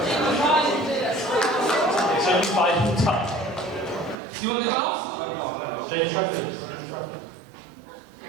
It's only 5 touch. Do you want the gloves? James Trafford.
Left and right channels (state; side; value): drops out; left; at 4.2 s